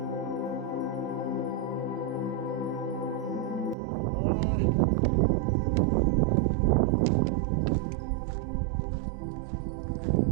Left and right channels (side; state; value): left; drops out; at 3.8 s